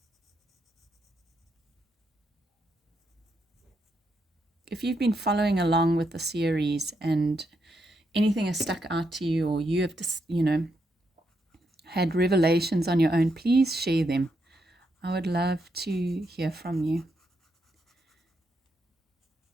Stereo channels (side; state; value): both; normal; correlation 0.81